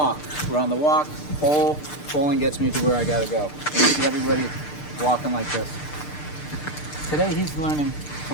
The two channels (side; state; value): right; late; 6.7 ms